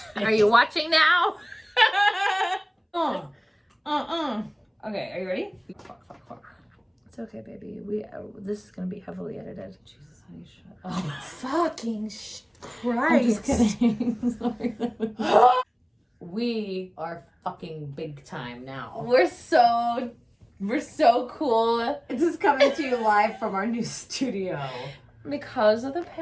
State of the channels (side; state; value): both; identical; correlation 1.00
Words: Are you watching now? Okay, are you ready? It's okay, baby. This is gonna be heavily edited. Jesus, honey, shut up. Oh, fucking Christ! I'm just kidding. Sorry. We are fucking big time now. We're so cool. This is coming to you live from our new studio. Because of the